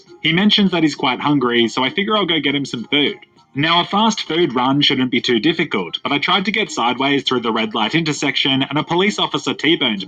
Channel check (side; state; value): both; identical; correlation 1.00